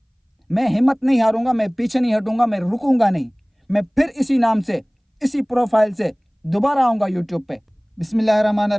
मैं हिम्मत नहीं हारूंगा, मैं पीछे नहीं हटूंगा, मैं रुकूंगा नहीं। मैं फिर इसी नाम से, इसी प्रोफाइल से दोबारा आऊँगा यूट्यूब पे।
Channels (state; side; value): identical; both; correlation 1.00